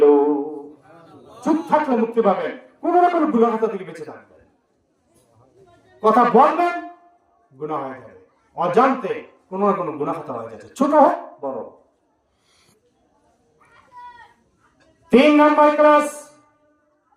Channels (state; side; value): identical; both; correlation 1.00